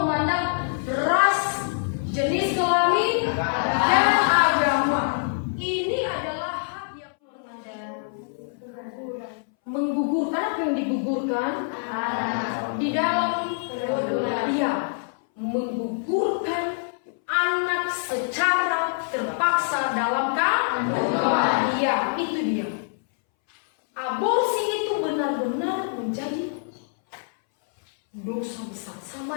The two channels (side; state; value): right; silent; 62 dB below the other